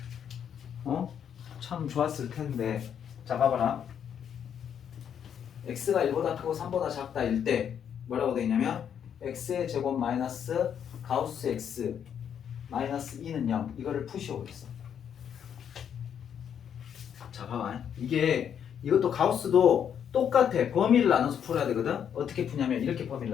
참 좋았을 텐데. 자, 봐봐라. x가 1보다 크고 3보다 작다 일 때 뭐라고 되어 있냐면 x의 제곱 마이너스 가우스 x 마이너스 2는 0 이거를 푸시오고 있어. 자, 봐봐. 이것도 가우스도 똑같아. 범위를 나눠서 풀어야 되거든. 어떻게 푸냐면 이렇게 범위를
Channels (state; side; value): quieter; right; 8.5 dB